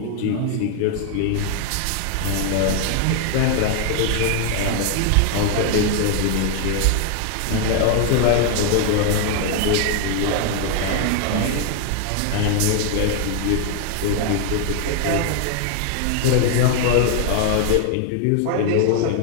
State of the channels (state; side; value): different; both; correlation 0.00